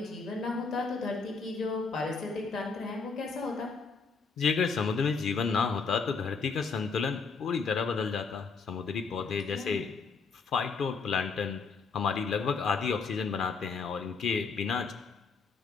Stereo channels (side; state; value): right; quieter; 5.0 dB